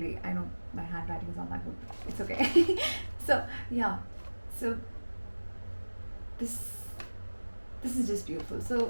I know my handwriting is not that good. It's okay. So yeah, so this is just beautiful.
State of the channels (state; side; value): inverted; both; correlation -1.00